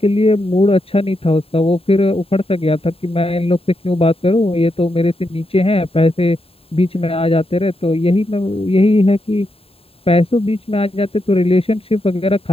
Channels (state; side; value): late; right; 0.27 ms